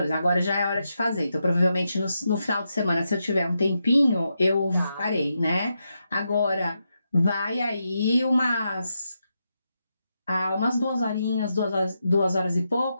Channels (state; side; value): inverted; both; correlation -0.85